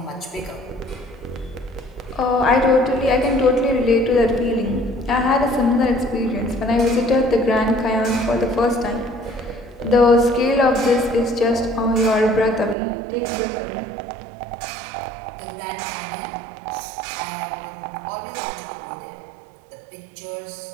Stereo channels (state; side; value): drops out; left; at 12.8 s